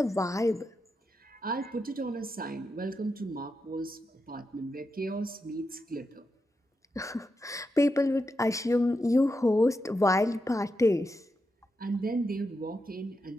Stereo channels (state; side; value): normal; both; correlation 0.86